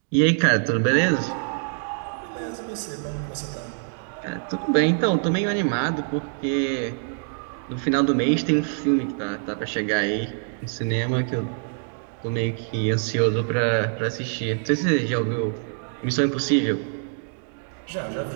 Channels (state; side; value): silent; left; digital silence